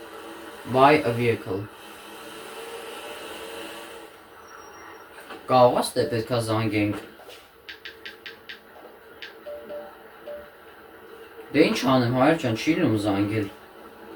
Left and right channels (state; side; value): identical; both; correlation 1.00